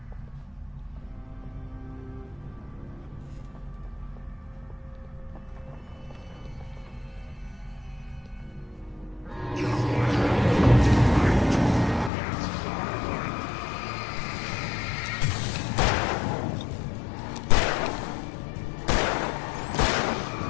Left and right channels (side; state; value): right; drops out; at 12.1 s